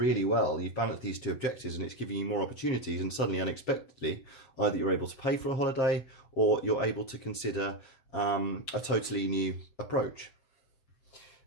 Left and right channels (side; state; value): right; late; 7.8 ms